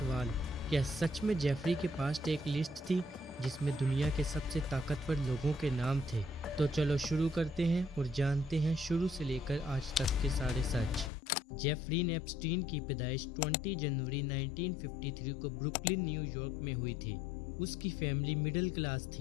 क्या सच में जेफरी के पास एक लिस्ट थी जिसमें दुनिया के सबसे ताकतवर लोगों के नाम थे। तो चलो शुरू करते हैं और जानते हैं शुरू से लेकर आज तक के सारे सच। जेफरीन एप्स्टीन की पैदाइश 20 जनवरी 1953 को ब्रुकलिन, न्यूयॉर्क में हुई थी। उसकी फैमिली मिडिल क्लास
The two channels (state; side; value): drops out; right; at 11.1 s